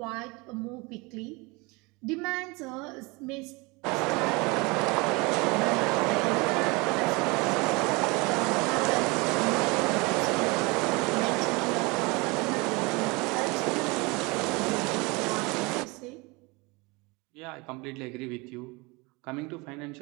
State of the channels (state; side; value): quieter; left; 26.1 dB